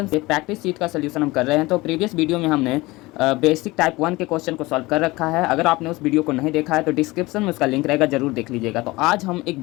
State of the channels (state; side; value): quieter; right; 21.2 dB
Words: से practice seat का solution हम कर रहे हैं। तो प्रीवियस वीडियो में हमने बेसिक टाइप 1 के क्वेश्चन को सॉल्व कर रखा है। अगर आपने उस वीडियो को नहीं देखा है तो डिस्क्रिप्शन में उसका लिंक रहेगा, जरूर देख लीजिएगा। तो आज हम एक